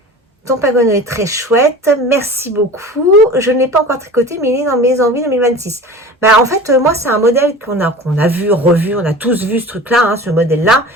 Ton Pengueno est très chouette, merci beaucoup. Je ne l'ai pas encore tricoté, mais il est dans mes envies 2026. En fait, moi, c'est un modèle qu'on a vu, revu, on a tous vu ce truc-là, hein, ce modèle-là.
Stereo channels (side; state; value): both; normal; correlation 0.38